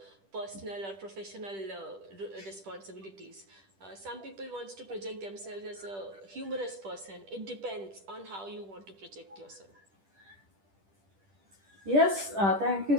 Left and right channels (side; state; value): left; late; 10 ms